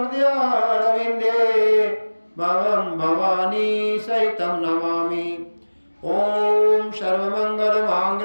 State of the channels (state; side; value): inverted; both; correlation -1.00